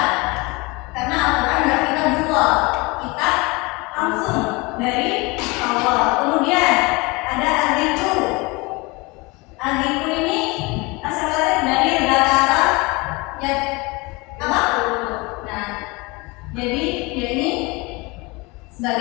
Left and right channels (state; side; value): quieter; right; 25.5 dB